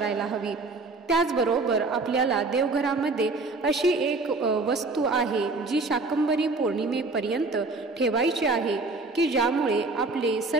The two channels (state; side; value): quieter; left; 3.5 dB